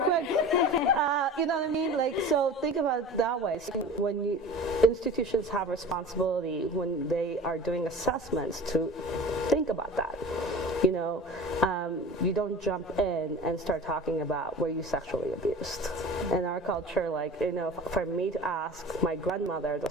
You know what I mean? Like, so think about it that way. So when institutions have responsibility when they are doing assessments to think about that. You know, you don't jump in and start talking about were you sexually abused. In our culture, like, you know, for me to ask my grandmother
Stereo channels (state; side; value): normal; both; correlation 0.38